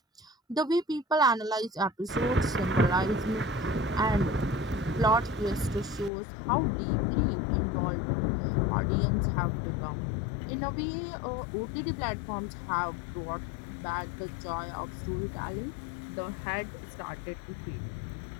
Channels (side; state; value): right; drops out; at 6.1 s